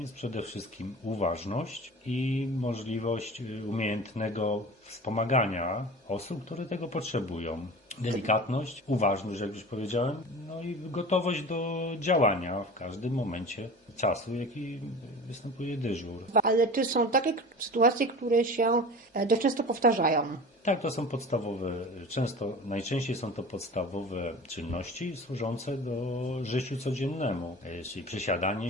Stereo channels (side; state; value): both; normal; correlation 0.36